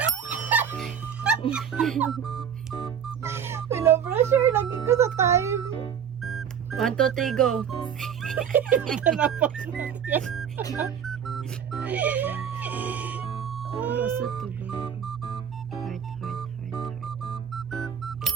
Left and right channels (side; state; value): left; quieter; 8.1 dB